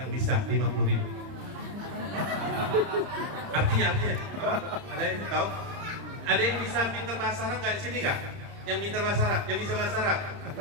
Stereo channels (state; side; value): late; left; 30 ms